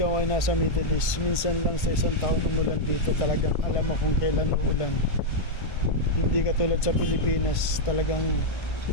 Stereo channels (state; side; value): late; right; 1.5 ms